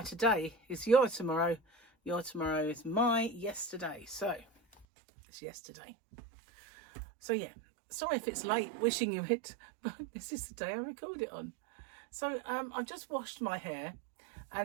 today is your tomorrow. Your tomorrow is my yesterday. So it's yesterday. So yeah, sorry if it's late wishing you it, but this is the day I record it on. So I've just washed my hair,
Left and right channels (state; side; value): drops out; left; at 4.9 s